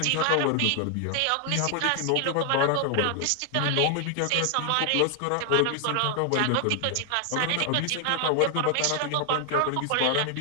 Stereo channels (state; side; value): different; both; correlation 0.00